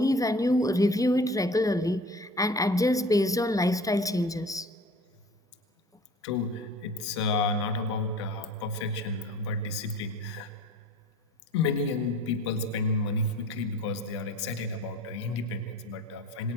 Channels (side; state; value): both; normal; correlation 0.44